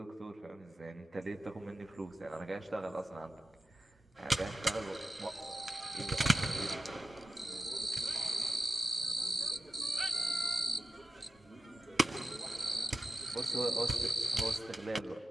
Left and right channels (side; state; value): both; normal; correlation 0.92